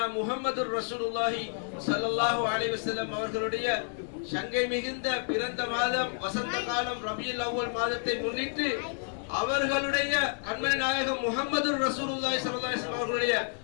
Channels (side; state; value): right; silent; 58 dB below the other